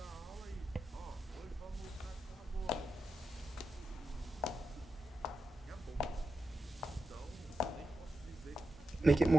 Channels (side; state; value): both; normal; correlation 0.89